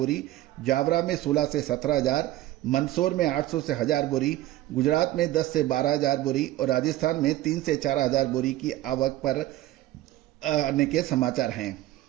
जावरा में 16 से 17 हजार, मंदसौर में 800 से 1000 बोरी, गुजरात में 10 से 12 हजार बोरी और राजस्थान में 3 से 4 हजार बोरी की आवक पर आने के समाचार हैं।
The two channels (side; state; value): left; quieter; 15.6 dB